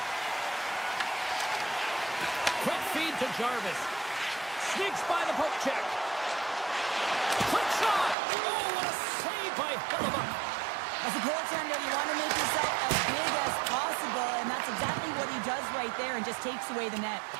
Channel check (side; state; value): left; drops out; at 8.2 s